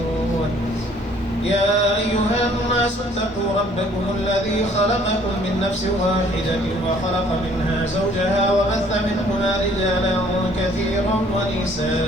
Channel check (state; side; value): normal; both; correlation 0.58